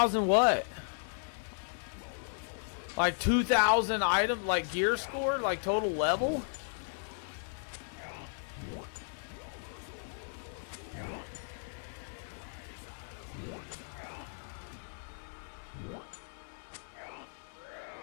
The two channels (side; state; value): right; silent; digital silence